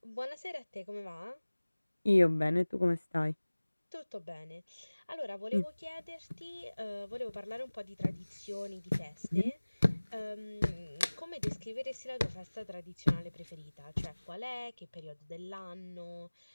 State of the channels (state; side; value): inverted; both; correlation -1.00